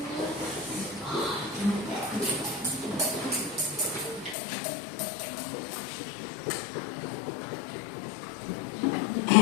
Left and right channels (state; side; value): drops out; right; at 4.4 s